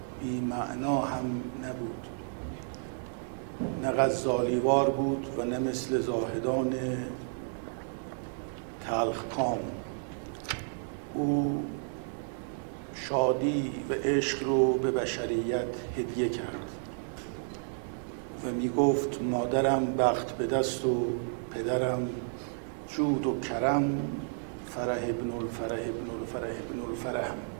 بی معنا هم نبود. نه غزالیوار بود و نه مثل زاهدان تلخکام. او شادی و عشق رو به بشریت هدیه کرد و می گفت مادرم بخت به دست و پدرم جود و کرم، فرح ابن الفرح ابن الفرح ابن الفرح.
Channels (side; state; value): left; silent; digital silence